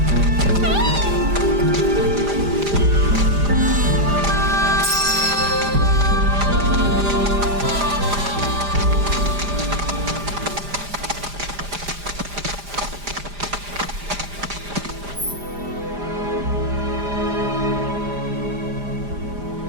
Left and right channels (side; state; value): left; late; 5.0 ms